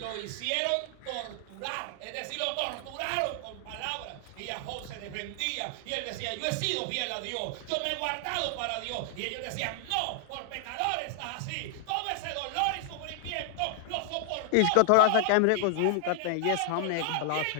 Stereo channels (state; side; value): different; both; correlation 0.00